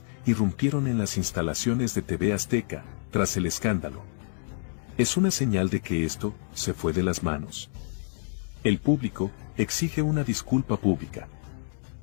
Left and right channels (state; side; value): silent; right; digital silence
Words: irrumpieron en las instalaciones de TV Azteca, tras el escándalo. Es una señal de que esto se fue de las manos. El público exige una disculpa pública.